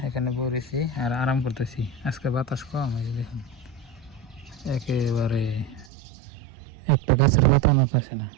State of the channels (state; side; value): drops out; left; at 5.9 s